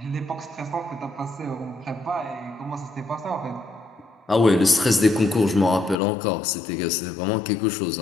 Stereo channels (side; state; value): right; drops out; at 6.0 s